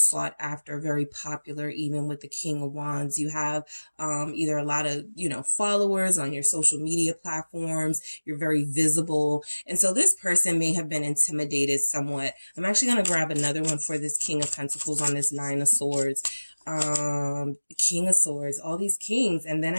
after, very popular. Even with the King of Wands, you have either a lot of, followers on your social media platforms. You're very visible. And so this person may have been intimidated somewhat. I'm actually going to grab another one for this King of Pentacles on this Nine of Swords. King of Swords, all these kings, and then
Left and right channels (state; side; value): inverted; both; correlation -1.00